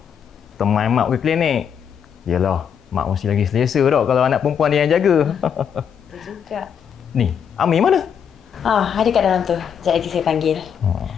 teman mak pergi klinik. Yalah, mak mesti lagi selesa dah kalau anak perempuan dia yang jaga. Betul juga. Ni, Ami mana? Ada kat dalam tu. Sekejap lagi saya panggil.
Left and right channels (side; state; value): right; quieter; 7.8 dB